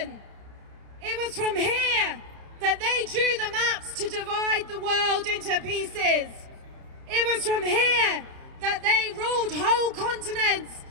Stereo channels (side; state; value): left; late; 30 ms